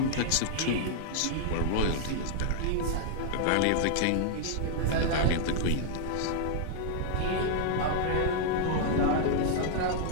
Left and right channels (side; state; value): both; different; correlation -0.01